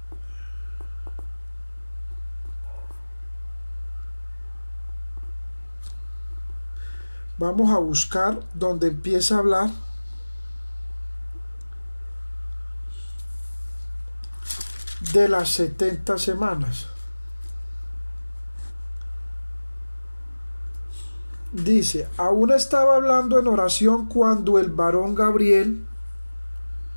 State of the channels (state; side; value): inverted; both; correlation -1.00